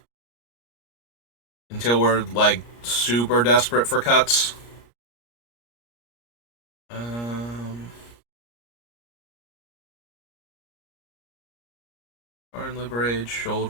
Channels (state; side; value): late; right; 34 ms